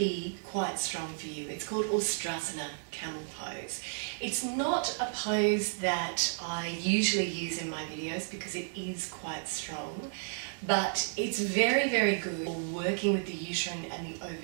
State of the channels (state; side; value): silent; left; digital silence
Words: quite strong for you. It's called Ustrasana, camel pose. It's not a pose that I usually use in my videos because it is quite strong, but it's very, very good for working with the uterine and the